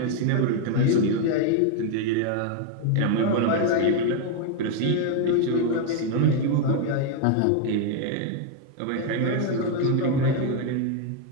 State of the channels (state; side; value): different; both; correlation 0.00